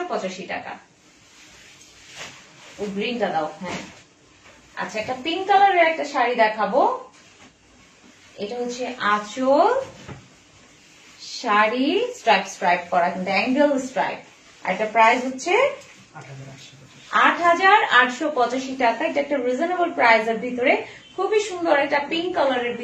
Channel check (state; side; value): identical; both; correlation 1.00